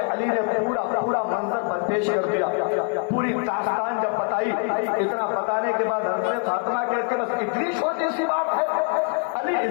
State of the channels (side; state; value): right; quieter; 38.2 dB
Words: علی نے پورا منظر پیش کر دیا, پوری داستان جب بتائی. اتنا بتانے کے بعد حضرت فاطمہ کہتے بس اتنی چھوٹی سی بات ہے علی,